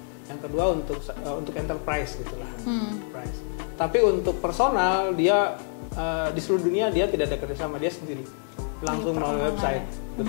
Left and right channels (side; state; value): right; silent; 60 dB below the other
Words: yang kedua untuk enterprise gitulah. Price. Tapi untuk personal dia di seluruh dunia dia tidak ada kerjasama, dia sendiri langsung melalui website.